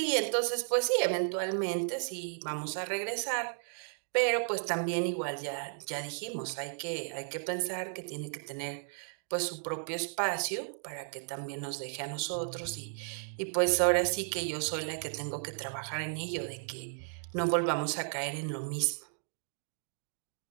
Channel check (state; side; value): silent; left; digital silence